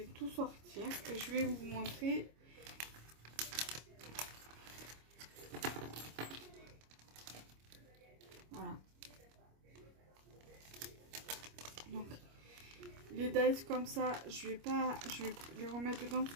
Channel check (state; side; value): late; left; 25 ms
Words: tout sortir et je vais vous montrer. Voilà. Donc les dice comme ça, je vais les remettre dedans parce